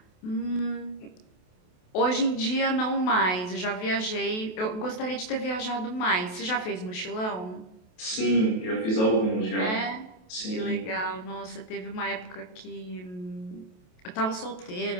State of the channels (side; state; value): right; late; 28 ms